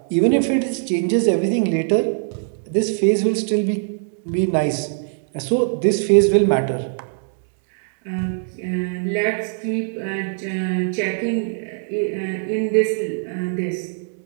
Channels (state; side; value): silent; left; 65 dB below the other